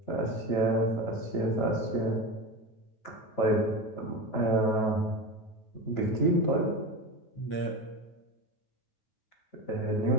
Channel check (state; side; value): late; right; 9.2 ms